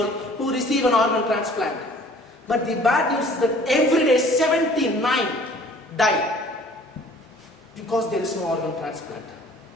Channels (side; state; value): both; normal; correlation 0.52